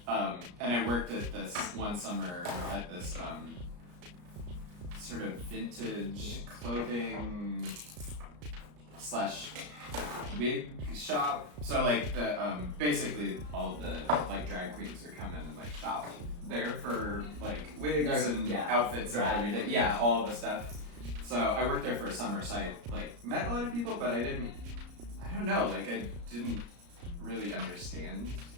And I worked at this one summer at this sort of vintage clothing / wig shop. So like the basically all the like drag queens are coming and like shop there for like wigs and outfits and everything. Yeah, all the stuff. So I worked there for a summer, so I like met a lot of people, but I don't know, like I didn't really understand,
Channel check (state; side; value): late; left; 34 ms